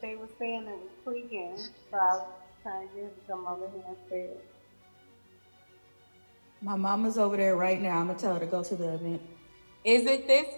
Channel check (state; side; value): inverted; both; correlation -1.00